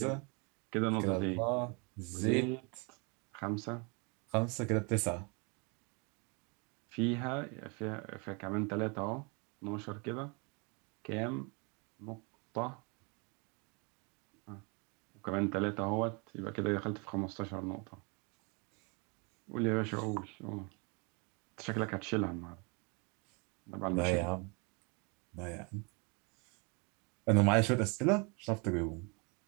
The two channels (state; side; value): quieter; left; 32.4 dB